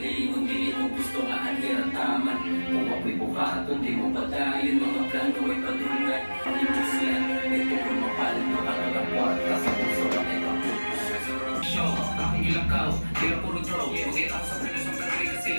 kung dili mo gusto nga anhirataman. Kung ako'y buhaton, di mo patayin, mga plano ay patulungan. Pag-ibig yan, ito kung mapalit na kakagapuan, kasi puso na ay kaputos. Show, akong ilakaw, tira puro draw. Bukit ako sa prelos ng kanari kasi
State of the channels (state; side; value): inverted; both; correlation -1.00